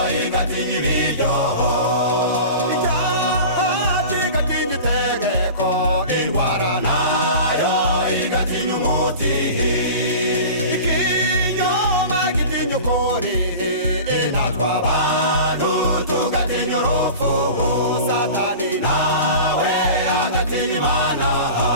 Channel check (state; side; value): inverted; both; correlation -0.36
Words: igatinya ibiryo icyaha kigatinya itegeko indwara nayo igatinya umuti ikinyoma gitinya ukuri natwe abantu tugatinya urupfu satani nawe agatinya imana